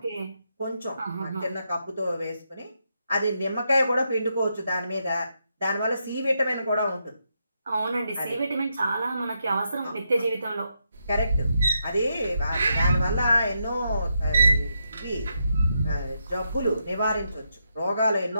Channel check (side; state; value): both; inverted; correlation -0.82